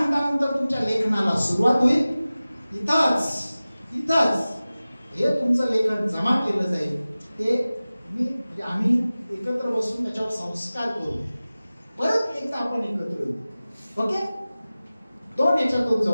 तुमच्या लेखनाला सुरुवात होईल. इथंच हे तुमचं लेखन जमा केलं जाईल. ते आम्ही एकत्र बसून त्याच्यावर संस्कार करू. परत एकदा आपण एकत्र येऊ. ओके, 2 याच्यातून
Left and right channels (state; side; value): inverted; both; correlation -0.97